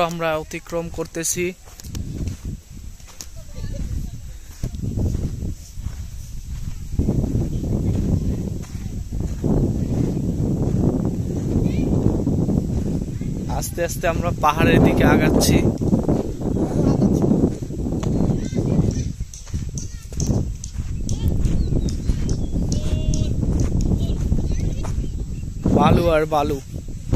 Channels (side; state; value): both; identical; correlation 1.00